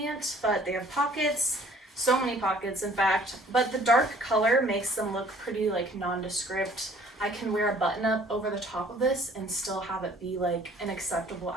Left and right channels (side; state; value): both; normal; correlation 0.55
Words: but they have pockets, so many pockets in fact, but the dark color makes them look pretty like nondescript. I can wear a button up over the top of this and still have it be like an acceptable